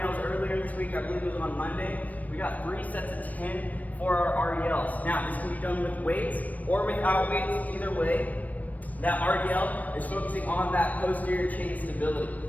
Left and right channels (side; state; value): right; late; 0.074 ms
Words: earlier this week, I believe it was on Monday. We got 3 sets of 10 for our RDLs. Now this can be done with weights or without weights, either way. That RDL is focusing on that posterior chain stability.